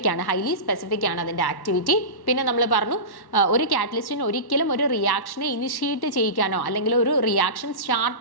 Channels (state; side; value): late; right; 1.1 ms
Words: ആണ്, ഹൈലി സ്പെസിഫിക് ആണ് അതിൻ്റെ ആക്ടിവിറ്റി. പിന്നെ നമ്മൾ പറഞ്ഞു ഒരു കാറ്റലിസ്റ്റിന് ഒരിക്കലും ഒരു റിയാക്ഷനെ ഇനിഷ്യേറ്റ് ചെയ്യിക്കാനോ അല്ലെങ്കിൽ ഒരു റിയാക്ഷൻ